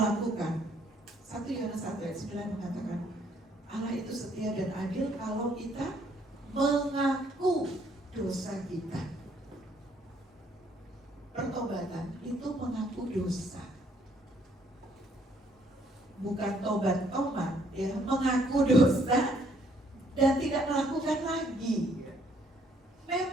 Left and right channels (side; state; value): both; normal; correlation 0.66